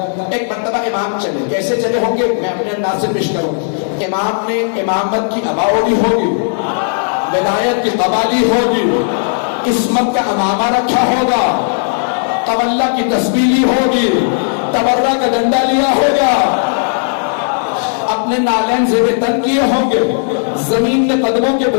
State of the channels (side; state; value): right; silent; digital silence